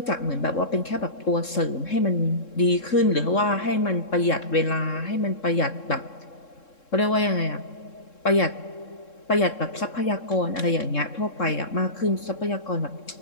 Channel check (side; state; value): right; late; 3.7 ms